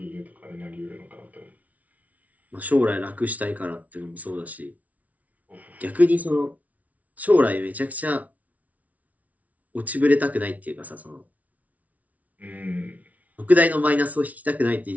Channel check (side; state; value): left; late; 0.071 ms